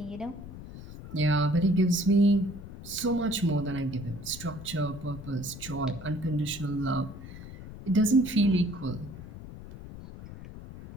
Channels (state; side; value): noise; left; rumble, 13 dB below the sound